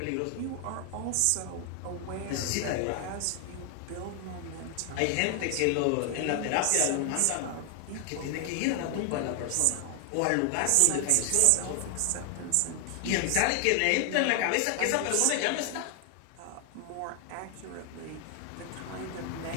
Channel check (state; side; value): different; both; correlation 0.00